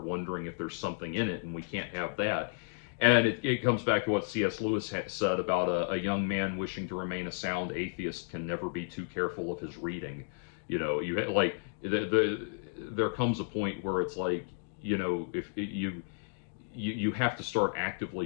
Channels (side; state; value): right; silent; digital silence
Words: wondering if there's something in it, and we can't have that. And it comes back to what C.S. Lewis said about a young man wishing to remain a sound atheist can never be too careful of his reading. There comes a point where it's like, if you have to start actively